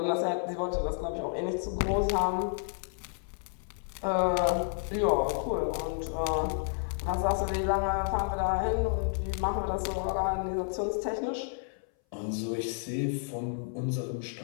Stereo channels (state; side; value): silent; right; 57 dB below the other